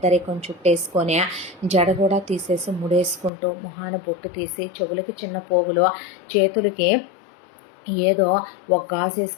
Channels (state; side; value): drops out; right; at 3.3 s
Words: చుట్టేసుకొని జడ కూడా తీసేసి ముడేసుకుంటూ, మొహాన బొట్టు తీసి, చెవులకి చిన్న పోగులు, చేతులకి ఏదో ఒక గాజు